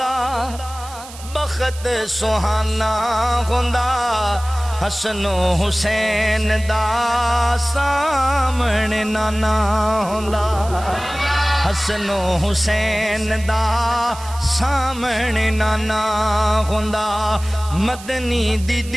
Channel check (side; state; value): right; noise; hiss, 16 dB below the sound